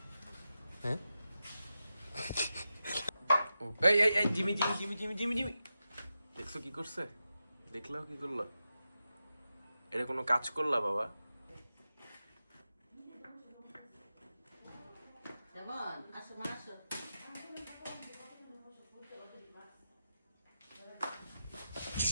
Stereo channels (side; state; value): both; inverted; correlation -0.91